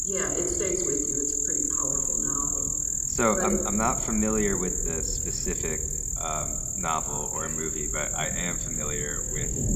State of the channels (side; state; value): both; identical; correlation 1.00